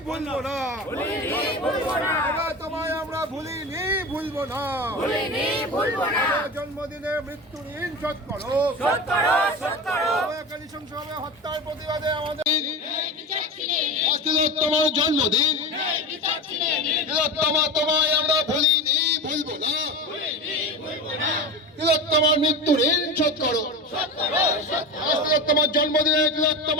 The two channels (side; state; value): both; normal; correlation 0.26